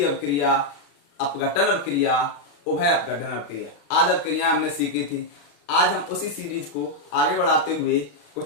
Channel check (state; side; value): late; right; 35 ms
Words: अवक्रिया, अपघटन अवक्रिया, उभय अपघटन अवक्रिया आदि अवक्रियाएं हमने सीखी थी। आज हम उसी सीरीज को आगे बढ़ाते हुए